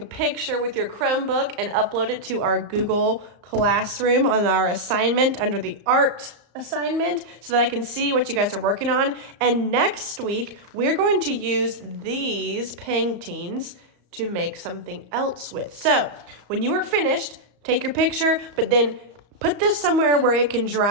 picture with your Chromebook and upload it to our Google Classroom on our assignment under the art assignment so that I can see what you guys are working on. And next week, we're going to use these paintings to make something else with. So when you are finished, take your picture, but then put this somewhere where it can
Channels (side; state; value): left; late; 34 ms